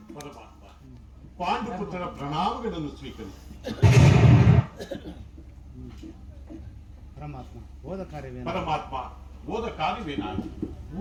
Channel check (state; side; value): identical; both; correlation 1.00